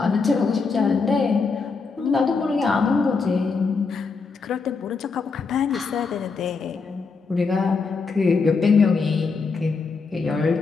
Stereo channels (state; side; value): quieter; right; 4.6 dB